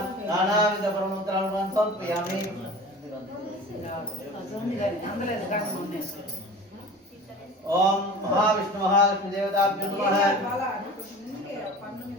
నానావిధ పరమంత్రాలను సమర్పయామి. ఓం మహావిష్ణు మహాలక్ష్మి దేవతాభ్యో నమః. బాలా కొంచెం ముందుకే పన్ను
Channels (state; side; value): normal; both; correlation 0.38